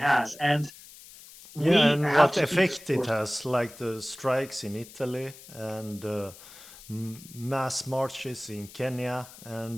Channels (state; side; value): noise; left; hiss, 19 dB below the sound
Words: And and what effect it has, like the strikes in Italy and mass marches in Kenya,